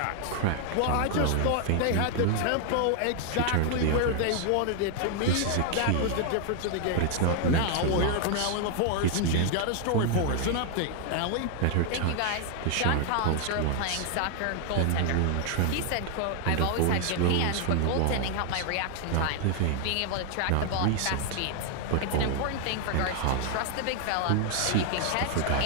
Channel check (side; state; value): both; different; correlation 0.00